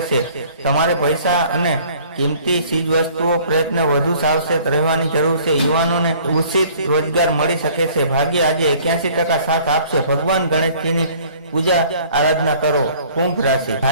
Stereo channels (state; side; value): inverted; both; correlation -0.54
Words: છે. તમારે પૈસા અને કિંમતી ચીજવસ્તુઓ પ્રયત્ન વધુ સાવચેત રહેવાની જરૂર છે. યુવાનોને ઉચિત રોજગાર મળી શકે છે. ભાગ્ય આજે 81% સાથ આપશે. ભગવાન ગણેશજીની પૂજા આરાધના કરો. કુંભ રાશિ,